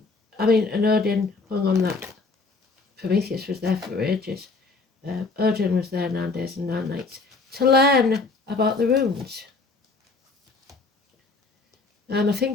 and Odin hung on that. Prometheus was there for ages. Odin was there 9 days and 9 nights to learn about the runes. I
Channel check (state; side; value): quieter; right; 3.8 dB